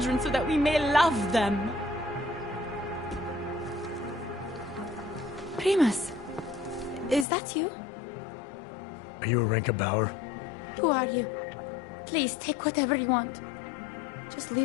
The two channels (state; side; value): drops out; right; at 7.2 s